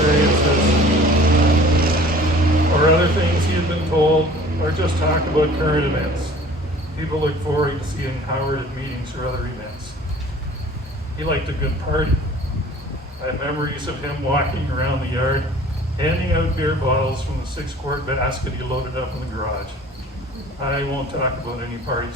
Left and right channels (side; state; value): both; normal; correlation 0.48